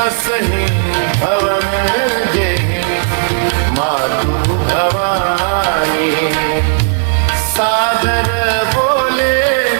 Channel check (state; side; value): silent; left; digital silence